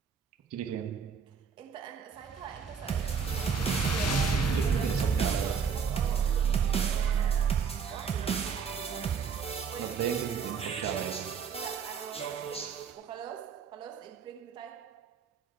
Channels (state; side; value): quieter; left; 6.4 dB